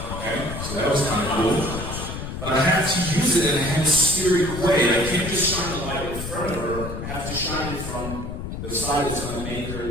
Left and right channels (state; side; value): noise; left; rumble, 7 dB below the sound